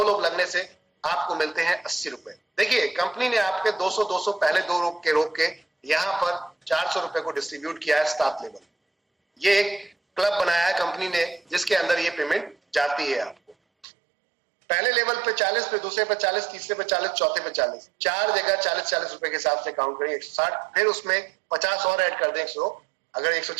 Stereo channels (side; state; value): left; drops out; at 13.9 s